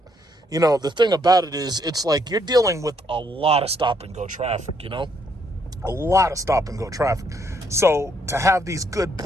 the thing about it is it's like you're dealing with a lot of stop and go traffic, a lot of stop and go traffic. So to have these good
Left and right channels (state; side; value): normal; both; correlation 0.71